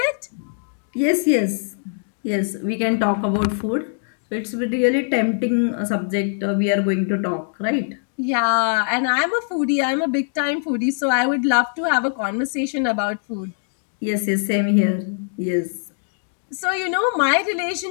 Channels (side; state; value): right; silent; digital silence